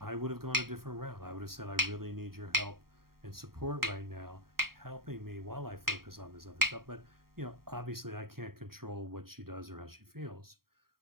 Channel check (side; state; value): left; late; 0.93 ms